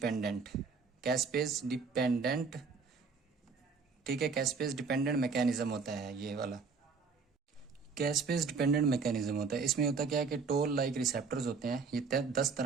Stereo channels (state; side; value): quieter; left; 5.0 dB